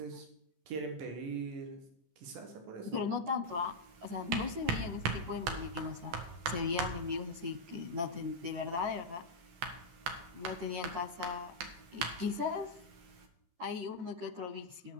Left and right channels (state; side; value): late; left; 13 ms